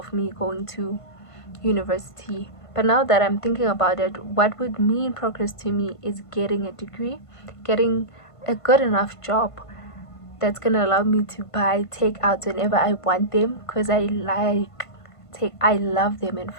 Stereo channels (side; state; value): right; late; 1.5 ms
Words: me going to university. But now that I'm thinking about it, what would mean progress to me is getting a degree, getting a good enough job that's gonna allow me to buy takeouts whenever I want them, because I love them, in